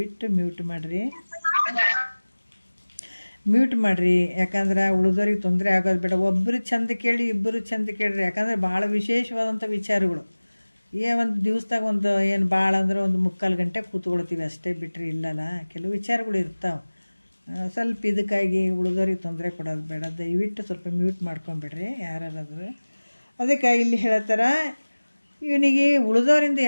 ಮ್ಯೂಟ್ ಮಾಡಿರಿ. ಯಾಕಂದ್ರೆ ಉಳಿದವ್ರಿಗೆ ತೊಂದರೆ ಆಗೋದು ಬೇಡ. ಒಬ್ಬರು ಚಂದ ಕೇಳಿ, ಇಬ್ಬರು ಚಂದ ಕೇಳ್ರಿ. ಯಾಕಂದರೆ ಭಾಳ ವಿಶೇಷವಾದಂಥ ವಿಚಾರಗಳು. ಒಂದು ದಿವಸದಾಗ ಏನು ಭಾಳ ಅಂದ್ರೆ 3/4 ಗಂಟೆ ಕೂತ್ಕೊಳ್ತೀವಿ ಅಷ್ಟೇ, ಬಿಟ್ಟರೆ ಇಲ್ಲಲ್ಲ, ಕೆಲವು ವಿಚಾರಗಳು ಇರ್ತಾವೆ. ಸ್ವಲ್ಪ ಇದಕ್ಕಾಗಿ ಉಳಿದವ್ರಿಗೆ ತೊಂದರೆ ಕೊಡೋದು ಬೇಡ. ದಯವಿಟ್ಟು ಸ್ವಲ್ಪ ಮ್ಯೂಟ್ ಮಾಡ್ಕೊಂಬಿಡ್ರಿ ಯಾರಾದ್ರೂ. ಅದಕ್ಕೆ ಇಲ್ಲಿ ಹೇಳ್ತಾರ, ಇವನಿಗೆ ಉಳಿದವರಿಂದ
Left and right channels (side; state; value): both; inverted; correlation -1.00